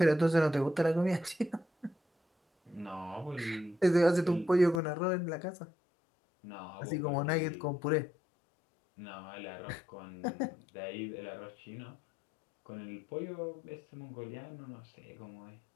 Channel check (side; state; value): right; drops out; at 4.8 s